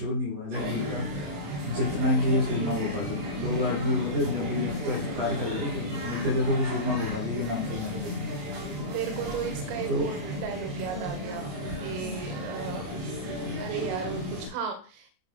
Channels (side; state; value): left; late; 27 ms